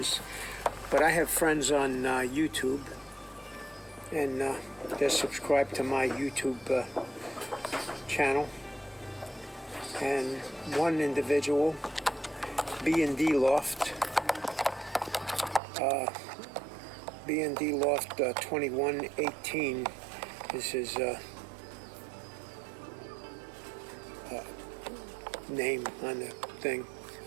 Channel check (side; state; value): left; drops out; at 15.6 s